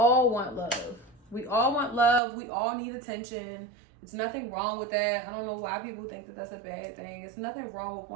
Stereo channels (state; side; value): drops out; left; at 2.2 s